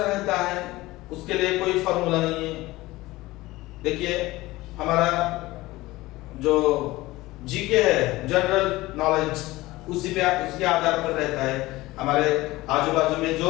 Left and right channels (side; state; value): right; quieter; 19.1 dB